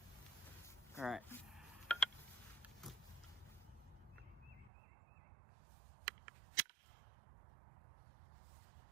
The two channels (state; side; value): drops out; left; at 4.7 s